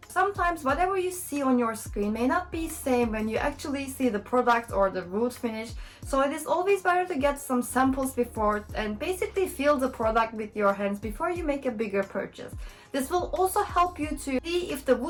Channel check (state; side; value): identical; both; correlation 1.00